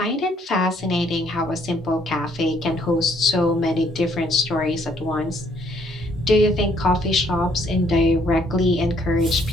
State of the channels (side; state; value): both; normal; correlation 0.66